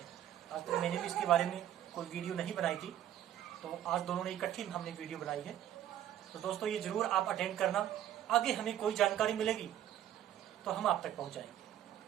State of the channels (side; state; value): left; quieter; 11.5 dB